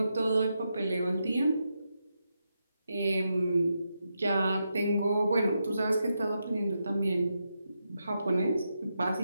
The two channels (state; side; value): inverted; both; correlation -0.85